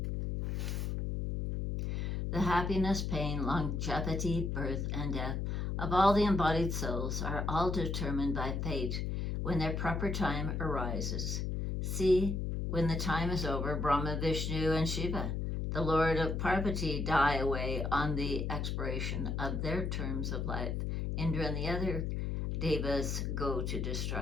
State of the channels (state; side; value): noise; left; hum, 1 dB below the sound